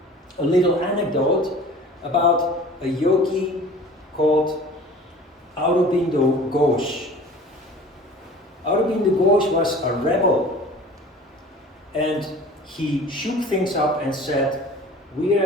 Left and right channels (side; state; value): both; normal; correlation 0.44